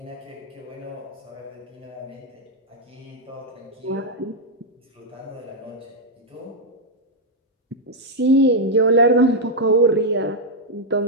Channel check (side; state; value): both; normal; correlation -0.02